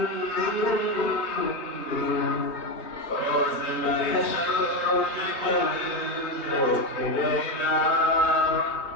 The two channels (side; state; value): right; late; 3.5 ms